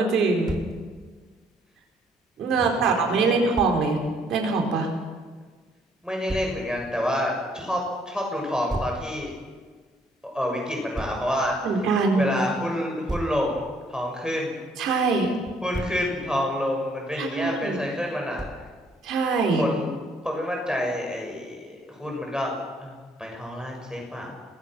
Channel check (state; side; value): normal; both; correlation 0.65